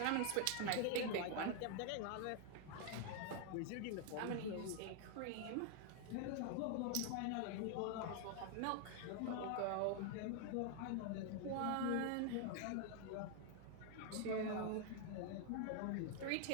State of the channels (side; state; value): both; different; correlation 0.00